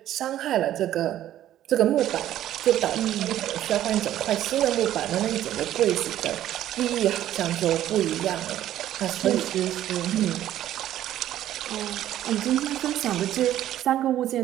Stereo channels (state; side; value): quieter; left; 12.5 dB